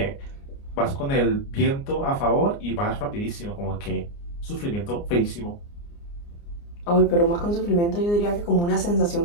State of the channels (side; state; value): right; late; 29 ms